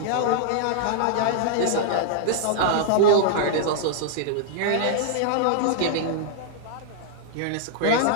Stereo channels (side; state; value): both; different; correlation -0.01